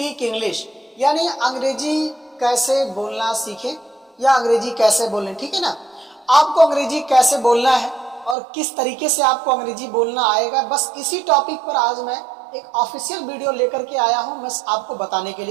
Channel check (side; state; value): left; drops out; at 8.3 s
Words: इंग्लिश, यानी अंग्रेजी कैसे बोलना सीखें या अंग्रेजी कैसे बोलें। ठीक है ना, आपको अंग्रेजी कैसे बोलना है और किस तरीके से आपको अंग्रेजी बोलना आएगा, बस इसी टॉपिक पर आज मैं एक ऑफिशियल वीडियो लेकर के आया हूं मैं आपको बताने के